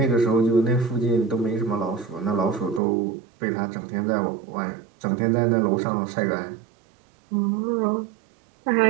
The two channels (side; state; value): left; drops out; at 2.8 s